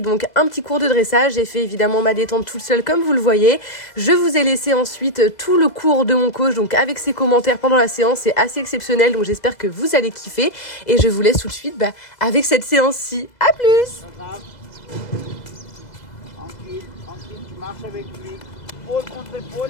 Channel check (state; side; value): late; right; 2.0 ms